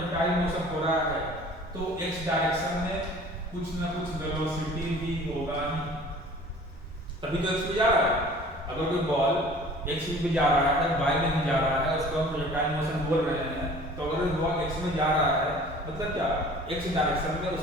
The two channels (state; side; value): normal; both; correlation 0.47